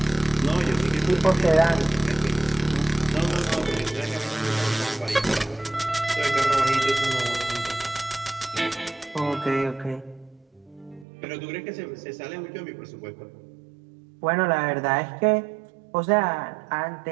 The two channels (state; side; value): drops out; left; at 11.1 s